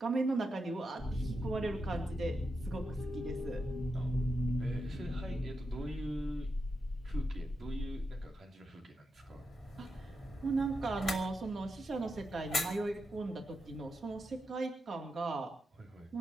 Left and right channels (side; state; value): both; normal; correlation 0.87